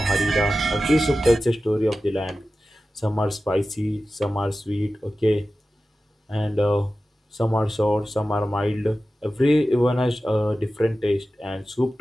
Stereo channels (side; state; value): both; normal; correlation 0.94